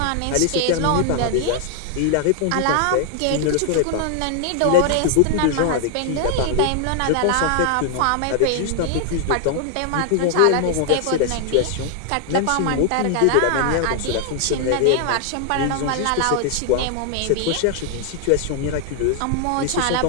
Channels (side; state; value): both; different; correlation 0.00